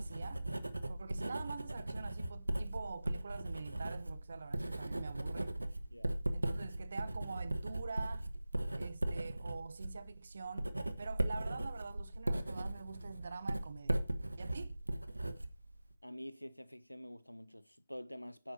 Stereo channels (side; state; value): both; inverted; correlation -0.97